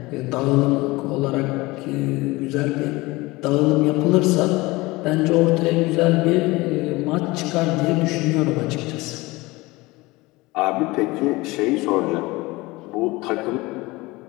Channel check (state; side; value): quieter; right; 21.7 dB